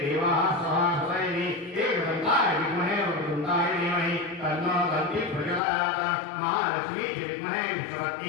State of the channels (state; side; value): drops out; right; at 5.6 s